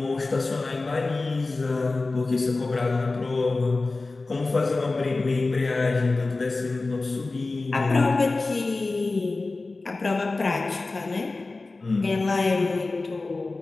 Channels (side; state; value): right; quieter; 3.5 dB